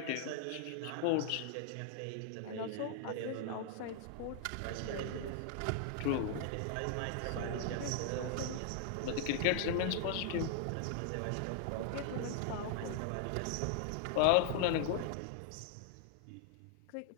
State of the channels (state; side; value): different; both; correlation 0.00